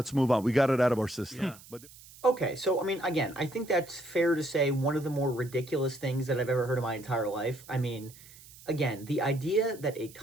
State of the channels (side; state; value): right; noise; hiss, 21 dB below the sound